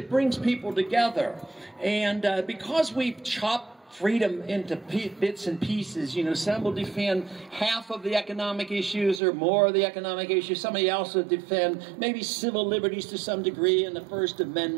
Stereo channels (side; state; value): left; drops out; at 9.2 s